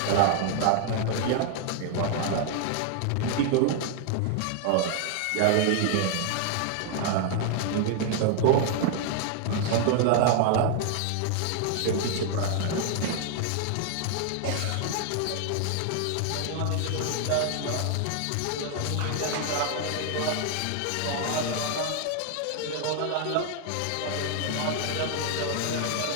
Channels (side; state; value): both; different; correlation 0.00